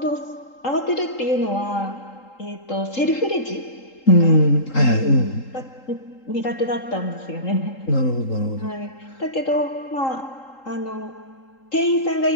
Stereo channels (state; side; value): late; right; 3.8 ms